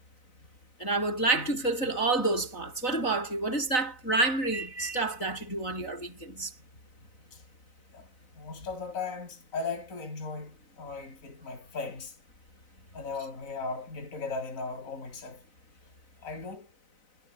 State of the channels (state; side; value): late; right; 4.0 ms